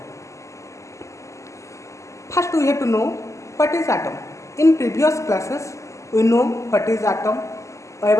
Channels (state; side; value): late; right; 0.15 ms